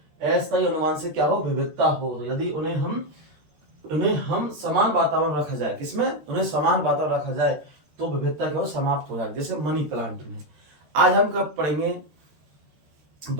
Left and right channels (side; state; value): left; late; 13 ms